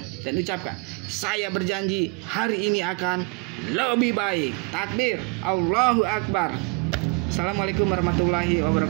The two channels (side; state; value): left; quieter; 29.3 dB